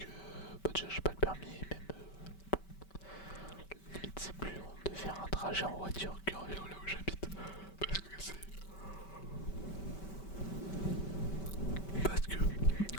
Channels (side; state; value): right; late; 5.2 ms